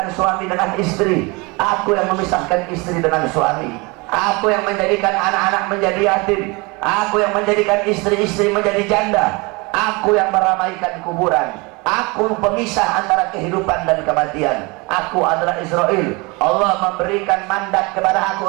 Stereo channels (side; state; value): left; quieter; 26.7 dB